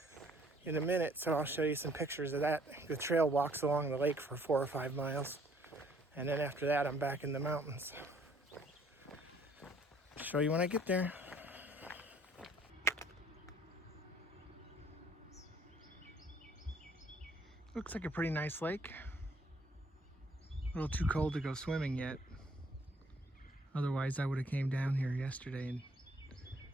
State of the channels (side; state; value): both; normal; correlation 0.62